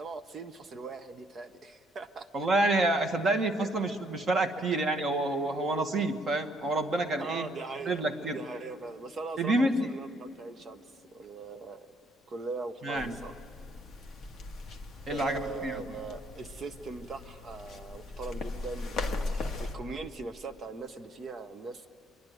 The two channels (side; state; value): both; normal; correlation 0.67